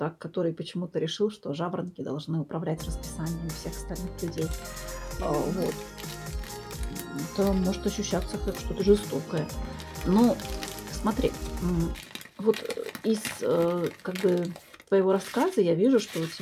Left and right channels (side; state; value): both; identical; correlation 1.00